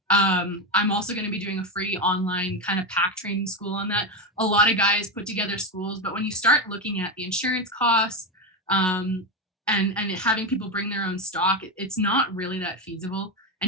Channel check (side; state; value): both; normal; correlation 0.13